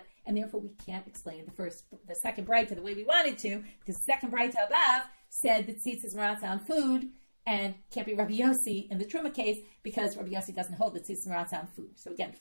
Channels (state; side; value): inverted; both; correlation -1.00